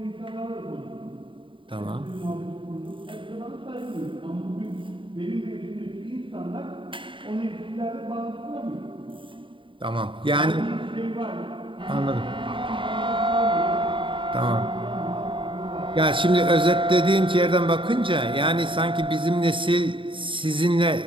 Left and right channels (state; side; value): late; left; 0.25 ms